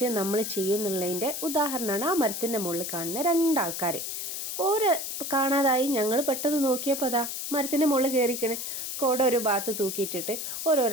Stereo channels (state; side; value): noise; left; hiss, 5 dB below the sound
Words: നമ്മൾ ചെയ്യുന്നുള്ളതിൻ്റെ ഉദാഹരണമാണ് ആ മരത്തിൻ്റെ മുകളിൽ കാണുന്ന രണ്ടാൾക്കാർ. ഓരോ കാണാതായി ഞങ്ങൾ പെട്ടെന്ന് നോക്കിയപ്പോൾ അതാ മരത്തിൻ്റെ മുകളിൽ കയറിക്കണേ, കോട ഒരു ഭാഗത്ത് തൂക്കിയിട്ടിട്ട്